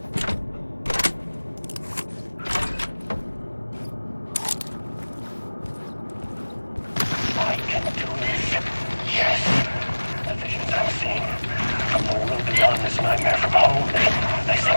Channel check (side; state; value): both; inverted; correlation -1.00